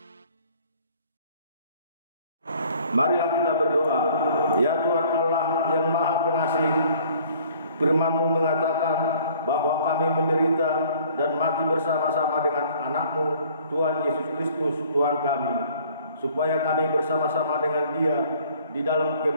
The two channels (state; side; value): inverted; both; correlation -0.56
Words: Marilah kita berdoa. Ya Tuhan Allah yang Maha Pengasih, Firman-Mu mengatakan bahwa kami menderita dan mati bersama-sama dengan anak-Mu, Tuhan Yesus Kristus, Tuhan kami, supaya kami bersama-sama dengan Dia di dalam